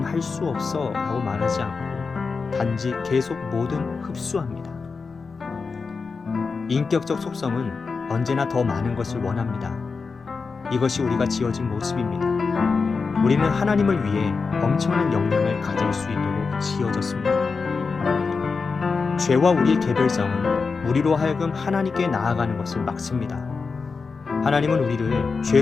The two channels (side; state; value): right; quieter; 4.7 dB